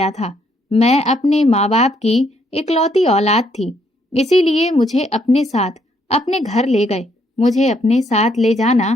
था। मैं अपने माँ बाप की इकलौती औलाद थी, इसीलिए मुझे अपने साथ अपने घर ले गए। मुझे अपने साथ ले जाना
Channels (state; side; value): normal; both; correlation 0.71